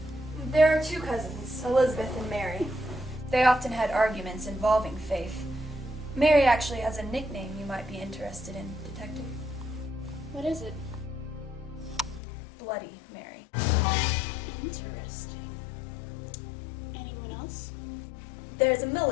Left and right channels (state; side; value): drops out; right; at 12.2 s